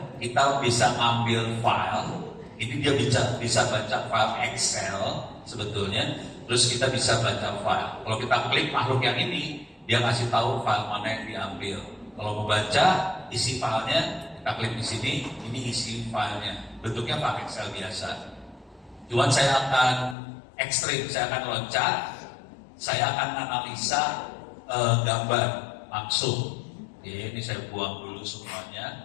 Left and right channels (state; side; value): drops out; right; at 20.2 s